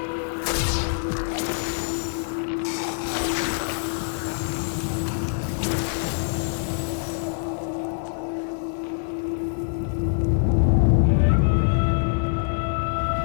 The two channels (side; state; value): right; silent; 62 dB below the other